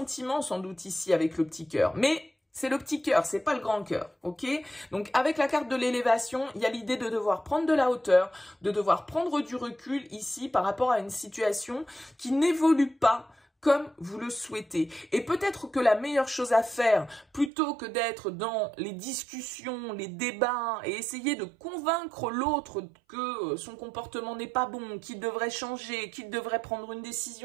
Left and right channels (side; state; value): left; drops out; at 17.5 s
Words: sans doute ici avec le petit cœur, mais c'est le petit cœur, c'est pas le grand cœur, ok? Donc, avec la carte de l'élévation, il y a l'idée de devoir prendre de la hauteur, de devoir prendre du recul ici par rapport à une situation qui n'évolue pas comme vous le souhaitez. Et peut-être que la meilleure chose à faire, plutôt que d'être dans les discussions, les débats, et essayer de convaincre l'autre que son comportement n'est pas bon, qu'il devrait changer, qu'il devrait prendre une